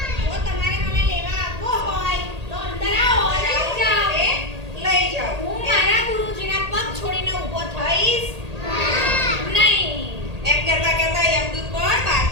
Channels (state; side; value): late; left; 1.8 ms